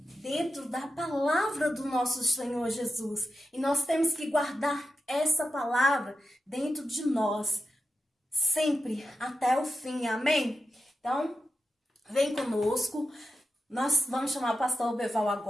dentro da palavra do nosso Senhor Jesus. E nós temos que guardar essa palavra dentro de nós, sempre, até o fim, amém? Então, vem conosco, nós vamos chamar o pastor Beval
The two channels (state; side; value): normal; both; correlation 0.90